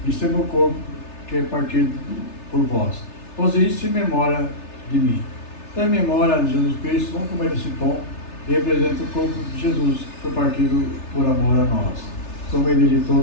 isto é meu corpo, que é partido por vós. Fazer isso em memória de mim. Em memória de Jesus Cristo, vamos comer esse pão, que representa o corpo de Jesus, que foi partido por amor a nós. Tomei dele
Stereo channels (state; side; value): late; right; 3.3 ms